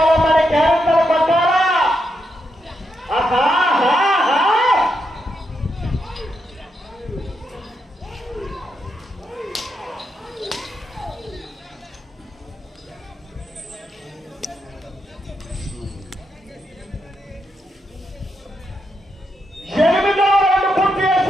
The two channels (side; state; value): both; normal; correlation 0.83